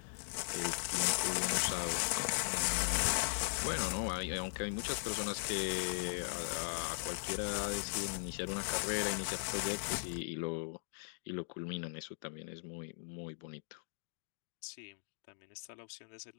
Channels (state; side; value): silent; right; digital silence